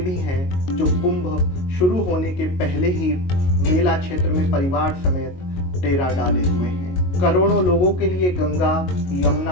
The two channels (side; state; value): right; late; 22 ms